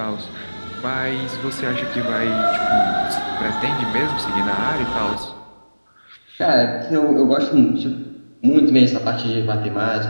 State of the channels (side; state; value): both; inverted; correlation -1.00